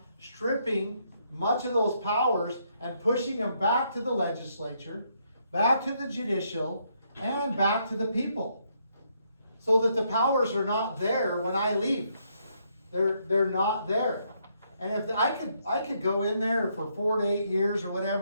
stripping much of those powers and pushing them back to the legislature, back to the judicial, and back to the people. So that the powers are not there when I leave. They're not there. And if I could go in there for 4 to 8 years or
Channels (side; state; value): both; inverted; correlation -0.74